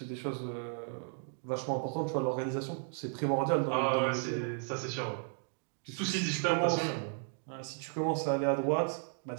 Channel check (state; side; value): silent; left; 55 dB below the other